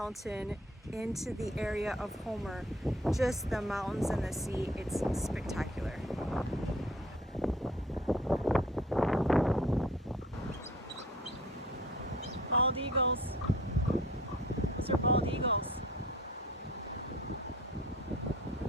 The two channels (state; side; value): normal; both; correlation 0.51